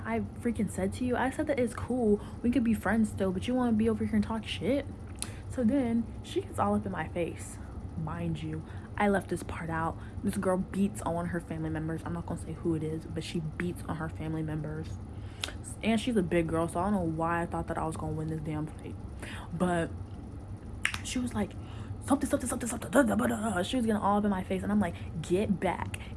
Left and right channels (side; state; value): both; identical; correlation 1.00